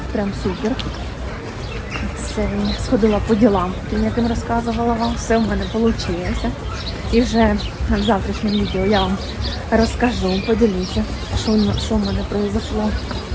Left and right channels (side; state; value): both; identical; correlation 1.00